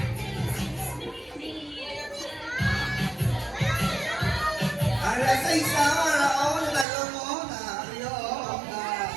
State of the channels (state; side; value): drops out; left; at 6.9 s